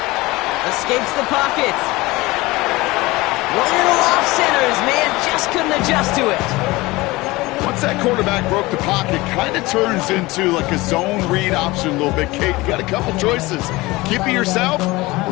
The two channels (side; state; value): right; quieter; 21.0 dB